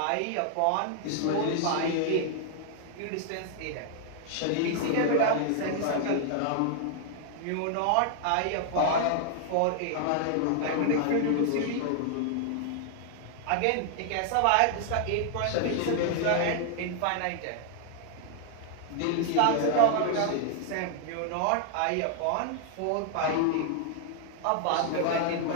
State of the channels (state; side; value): different; both; correlation 0.00